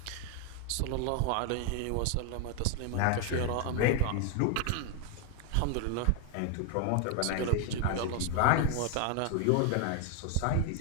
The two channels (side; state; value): both; different; correlation 0.01